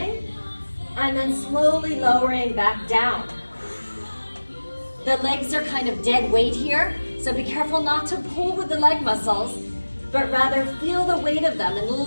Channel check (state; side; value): inverted; both; correlation -1.00